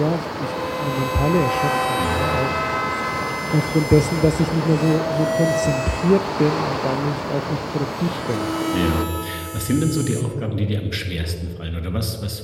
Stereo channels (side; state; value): both; identical; correlation 1.00